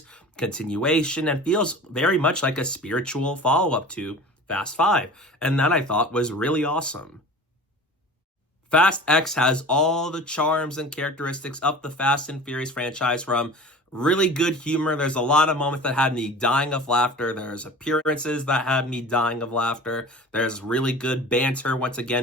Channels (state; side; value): normal; both; correlation 0.38